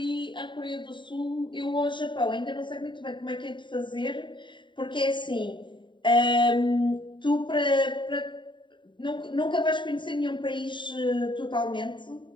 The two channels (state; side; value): late; right; 0.23 ms